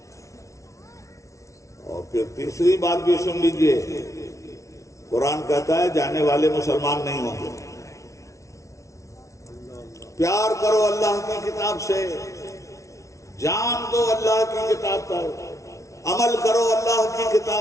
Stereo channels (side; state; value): right; late; 0.15 ms